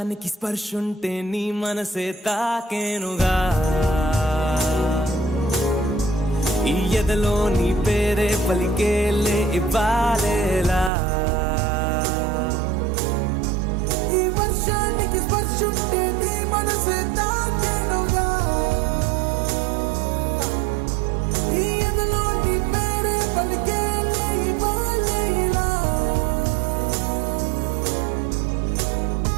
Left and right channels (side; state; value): left; drops out; at 10.9 s